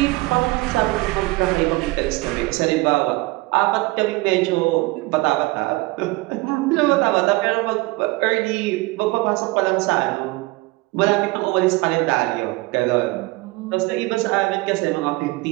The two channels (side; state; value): left; quieter; 21.9 dB